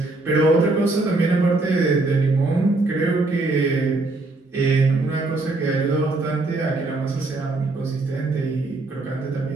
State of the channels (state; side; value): quieter; left; 3.1 dB